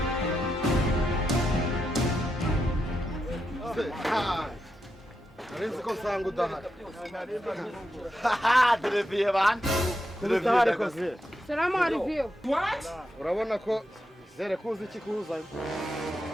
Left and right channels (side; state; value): both; normal; correlation 0.85